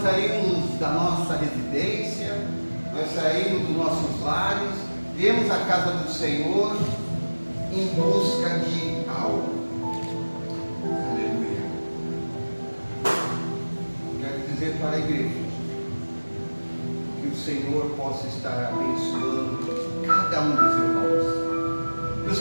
nós saímos da nossa residência, nós saímos dos nossos lares, viemos à casa do Senhor em busca de algo. Aleluia. Quero dizer para a igreja que o Senhor possa estar abençoando cada um dos irmãos, que o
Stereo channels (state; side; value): inverted; both; correlation -1.00